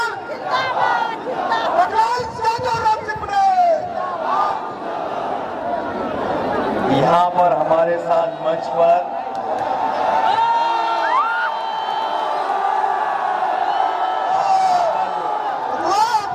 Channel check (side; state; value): both; identical; correlation 1.00